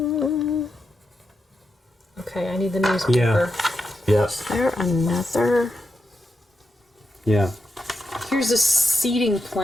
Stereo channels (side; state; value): both; normal; correlation 0.86